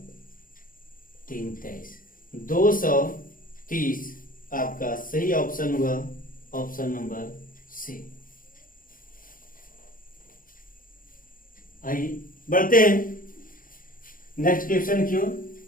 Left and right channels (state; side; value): late; right; 0.40 ms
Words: 3 23, 230 आपका सही ऑप्शन हुआ, ऑप्शन नंबर सी। आइए बढ़ते हैं नेक्स्ट क्वेश्चन की ओर।